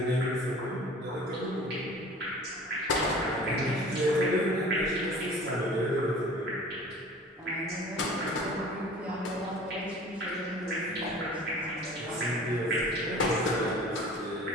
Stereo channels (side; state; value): both; normal; correlation 0.44